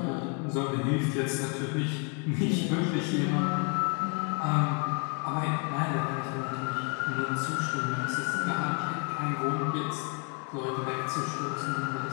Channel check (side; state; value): right; quieter; 35.1 dB